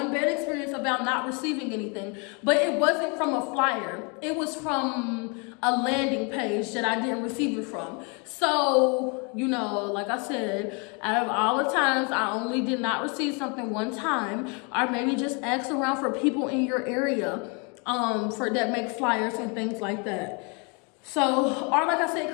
bad experience about not receiving anything, but it wasn't from a flyer. It was from a landing page that I didn't receive it from. So, you know, like I said, out of all the times, I only did not receive something one time, or maybe just ask around for people in your area for that make flyers and things like that. So, or like I said,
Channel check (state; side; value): quieter; right; 33.6 dB